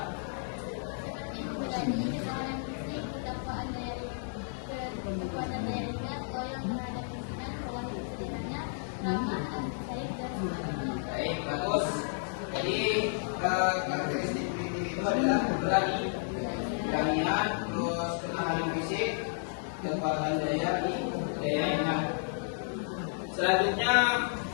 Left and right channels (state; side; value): silent; right; digital silence